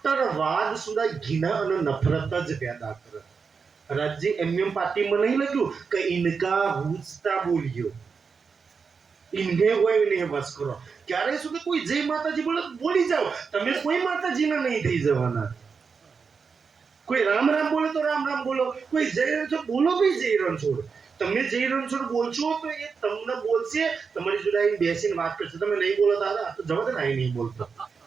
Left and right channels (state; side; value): quieter; left; 5.5 dB